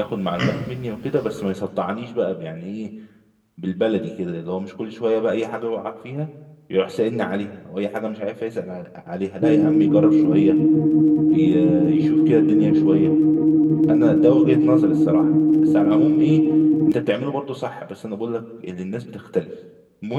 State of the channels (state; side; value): identical; both; correlation 1.00